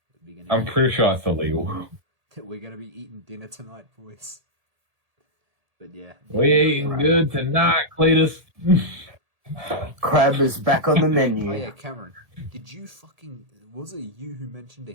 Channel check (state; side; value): late; left; 1.8 ms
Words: I'm pretty sure it's illegal. We're going to be eating dinner tonight, boys. But yeah. We're eating good tonight, Cletus. Crab is back on the menu. Oh yeah, Cameron. Did you fucking... Was it you who mentioned a